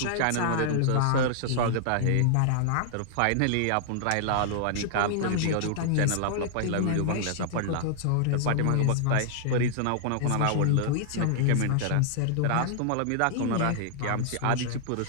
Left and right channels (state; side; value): different; both; correlation -0.01